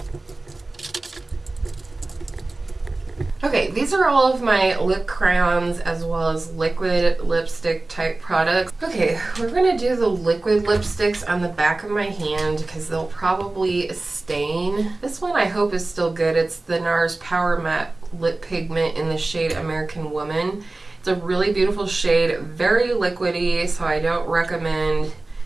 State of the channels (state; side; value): quieter; left; 3.1 dB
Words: Okay, these are all of my lip crayons as well as liquid lipstick type products. Okay, we're gonna do the liquid lipsticks on the back of my hand because they'll probably stain. This one I hope is still good. It's the NARS Power Matte Lip Pigment in the shade American Woman. It's a really beautiful shade, very liquidy, so I don't recommend